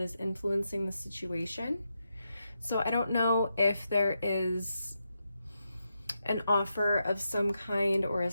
influencing the situation. So I don't know if there is an offer of some kind or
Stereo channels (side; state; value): both; inverted; correlation -0.85